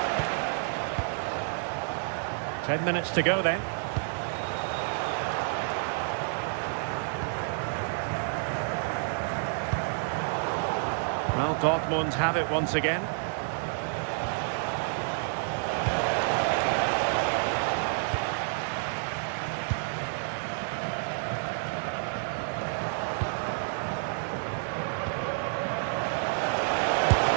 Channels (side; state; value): left; silent; digital silence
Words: 10 minutes to go then. Well, Dortmund have it once again.